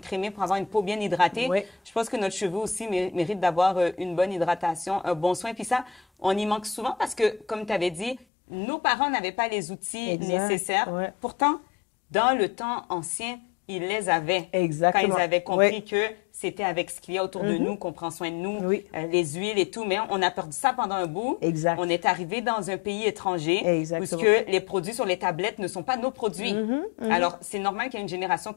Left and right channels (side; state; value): right; drops out; at 8.2 s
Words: pour avoir une peau bien hydratée, Oui. je pense que notre cheveu aussi mérite d'avoir une bonne hydratation, un bon soin. Puis ça, on y manque souvent parce que, comme tu avais dit, nos parents n'avaient pas les outils nécessaires. Ouais. Pourtant, dans le temps ancien, ils les avaient. Exactement. Quand ils avaient compris que c'était avec ce qu'il y a autour de nous qu'on prend soin de nous, Oui. les huiles et tout. Mais on a perdu ça pendant un bout. Exact. On est arrivé dans un pays étranger Exactement. où les produits sur les tablettes ne sont pas nos produits. Alors, c'est normal qu'il y ait une génération